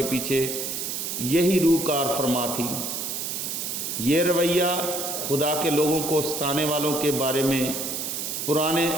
پیچھے یہی روح کار فرما تھی۔ یہ رویہ خدا کے لوگوں کو ستانے والوں کے بارے میں پرانے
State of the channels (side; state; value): right; noise; hiss, 3 dB below the sound